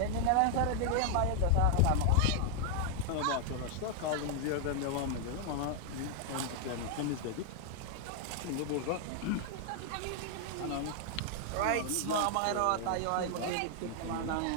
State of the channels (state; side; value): different; both; correlation 0.00